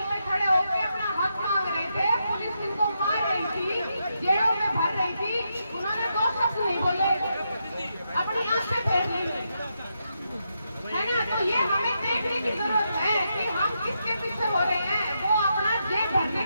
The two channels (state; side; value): inverted; both; correlation -0.83